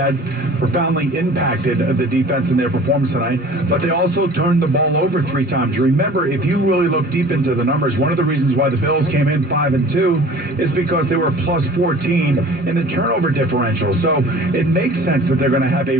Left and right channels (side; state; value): both; normal; correlation 0.45